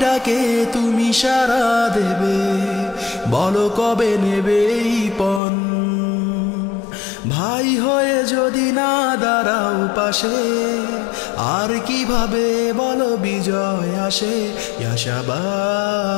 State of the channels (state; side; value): drops out; right; at 5.4 s